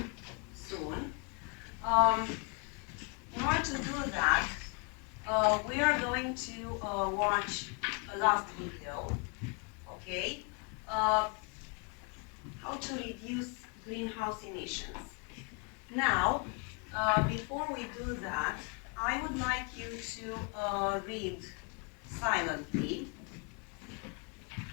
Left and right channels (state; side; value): quieter; right; 33.3 dB